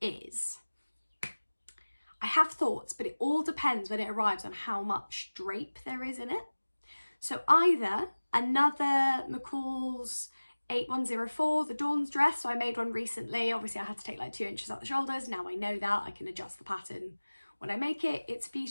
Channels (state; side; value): inverted; both; correlation -1.00